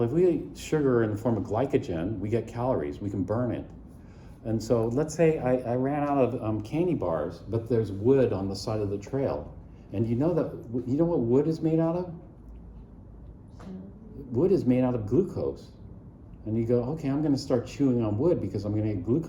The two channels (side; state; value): both; identical; correlation 1.00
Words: if we eat sugar in the form of glycogen, we get calories, we can burn it. And so let's say I ran out of candy bars, but there's wood on the side of the trail. And you know what wood is made out of? Wood is made out of glucose. And you go, okay, I'm gonna start chewing on wood because I'm gonna get